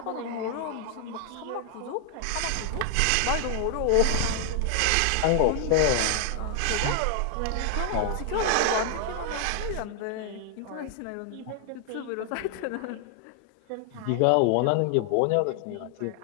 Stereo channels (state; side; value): different; both; correlation 0.00